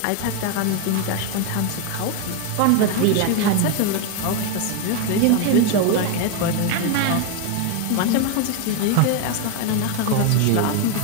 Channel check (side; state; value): both; different; correlation 0.02